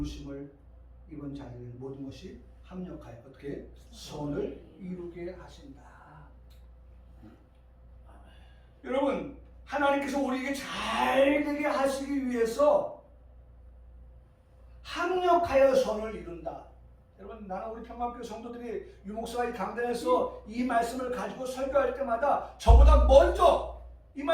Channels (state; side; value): identical; both; correlation 1.00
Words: 입은 자들에게 모든 것이 합력하여 어떻게 선을 이루게 하신다. 여러분, 하나님께서 우리에게 잘 되게 하시기 위해서 합력하여 선을 이룬다. 여러분, 나는 우리 평강교회 성도들이 유목사가 이 강단에서 이 말씀을 가지고 설교할 때마다 저보다 먼저 이